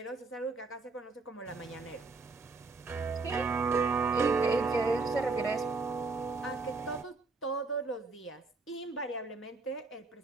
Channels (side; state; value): left; quieter; 3.9 dB